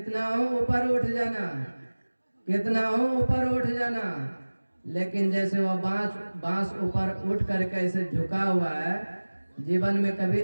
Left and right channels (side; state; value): both; inverted; correlation -1.00